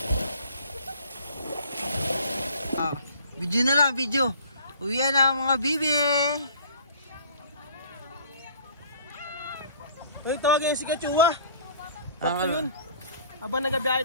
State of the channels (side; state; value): both; inverted; correlation -0.50